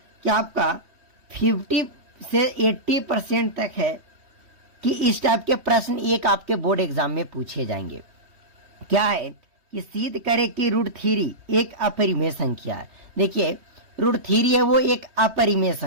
कि आपका 50 से 80% तक है कि इस टाइप के प्रश्न एक आपके बोर्ड एग्जाम में पूछे जाएंगे। क्या है कि सिद्ध करें कि √3 एक अपरिमेय संख्या है। देखिए √3 है वो एक अपरिमेय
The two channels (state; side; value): late; left; 3.2 ms